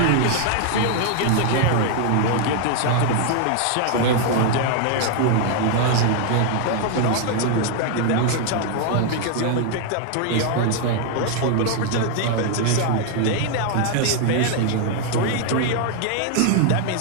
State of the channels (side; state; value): both; different; correlation 0.00